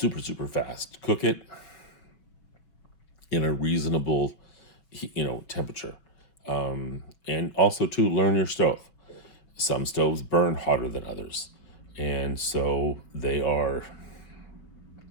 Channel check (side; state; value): right; late; 5.9 ms